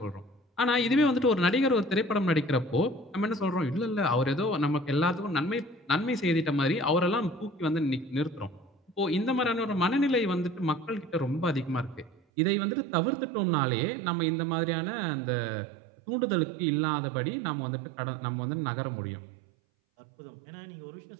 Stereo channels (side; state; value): left; drops out; at 12.2 s